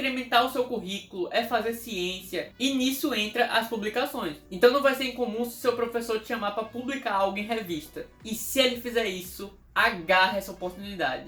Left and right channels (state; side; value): identical; both; correlation 1.00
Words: o seu currículo, é fazer ciência e nisso entra as publicações. Então não vai ser incomum se o seu professor te chamar para publicar algo em revista. E se ele fizer isso, agarre essa